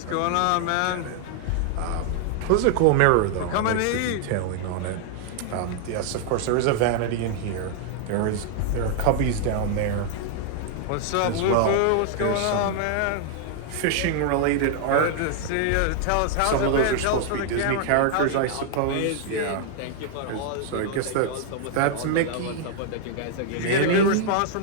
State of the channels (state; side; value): different; both; correlation 0.00